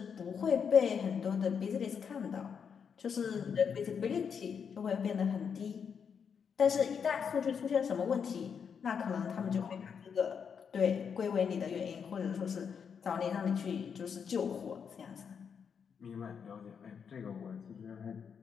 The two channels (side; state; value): right; quieter; 6.8 dB